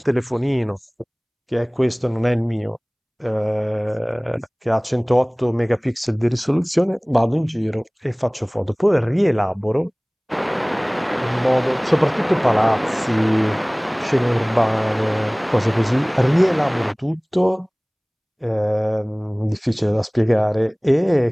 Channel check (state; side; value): identical; both; correlation 1.00